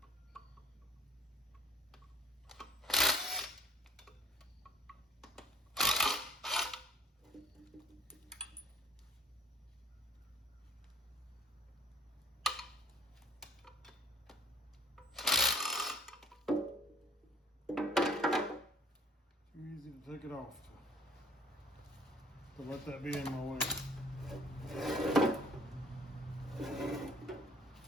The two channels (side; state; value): both; normal; correlation 0.54